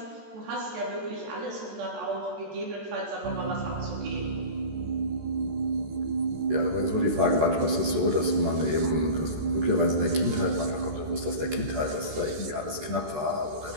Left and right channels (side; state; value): left; late; 14 ms